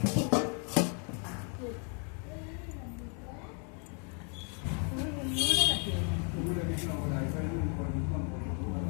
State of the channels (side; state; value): right; quieter; 38.8 dB